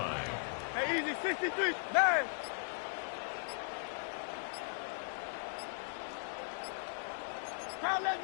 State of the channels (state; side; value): silent; right; digital silence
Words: Hey, easy. 63. 9. Call up